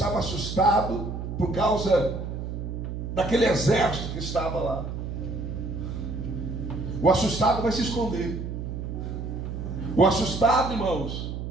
assustado por causa daquele exército que estava lá. O assustado vai se esconder. O assustado, irmãos,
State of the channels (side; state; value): right; noise; hum, 6 dB below the sound